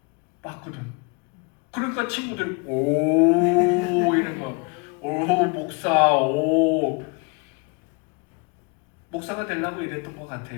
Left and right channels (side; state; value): right; quieter; 31.8 dB